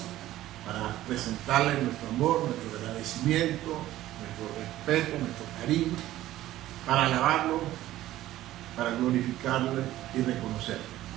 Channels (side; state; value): left; quieter; 14.6 dB